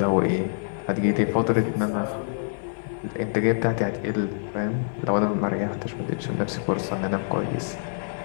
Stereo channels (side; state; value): right; silent; digital silence